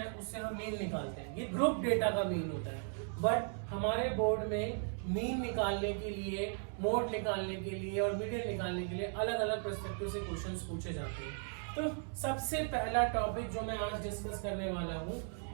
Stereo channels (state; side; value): silent; left; 53 dB below the other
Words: उससे हम मीन निकालते हैं। ये ग्रुप डेटा का मीन होता है। बट हमारे बोर्ड में मीन निकालने के लिए, मोड निकालने के लिए और मीडियन निकालने के लिए अलग अलग पर्सपेक्टिव से क्वेश्चंस पूछे जाते हैं। तो सबसे पहला टॉपिक जो मैं आज डिस्कस करने वाला हूँ